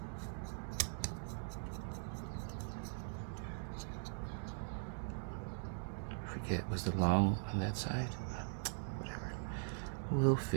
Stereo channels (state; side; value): silent; left; digital silence